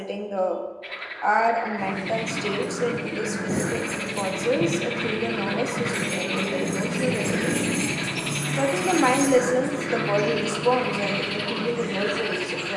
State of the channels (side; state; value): both; identical; correlation 1.00